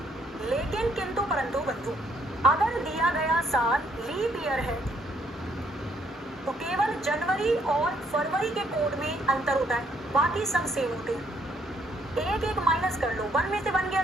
लेकिन किंतु परंतु बंधु, अगर दिया गया साल लीप ईयर है तो केवल जनवरी और फरवरी के कोड में अंतर होता है, बाकी सब सेम होते हैं। एक माइनस कर लो, 1 में से 1 गया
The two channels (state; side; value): normal; both; correlation 0.68